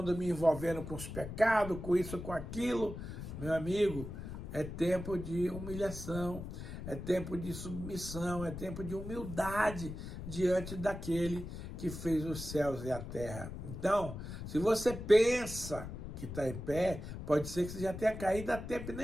me envolvendo com os pecados, com isso, com aquilo. Meu amigo, é tempo de humilhação, é tempo de submissão, é tempo de humildade diante daquele que fez os céus e a terra. Então, se você pensa que está em pé, pode ser que você já tenha caído a tempo e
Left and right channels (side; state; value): left; noise; rumble, 8 dB below the sound